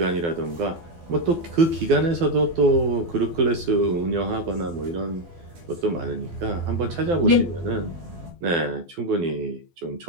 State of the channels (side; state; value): left; late; 12 ms